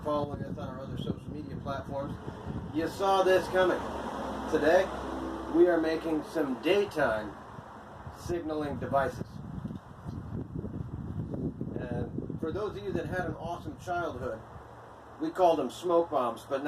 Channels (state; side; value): identical; both; correlation 1.00